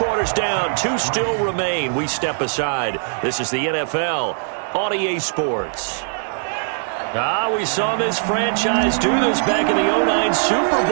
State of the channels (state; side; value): silent; left; 60 dB below the other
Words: down. 2 still remain. We step aside. This is the NFL on EA Sports. We saw this franchise do this back in the 2009 Super